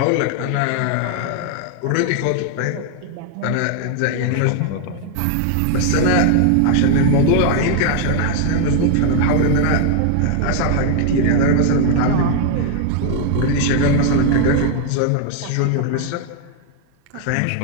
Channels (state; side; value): different; both; correlation 0.00